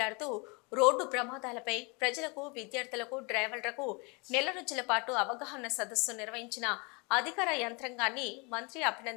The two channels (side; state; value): right; quieter; 30.2 dB